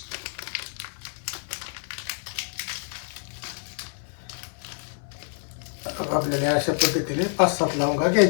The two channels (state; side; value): silent; right; 56 dB below the other